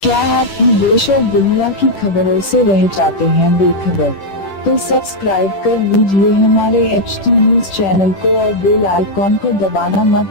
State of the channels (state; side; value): late; right; 10 ms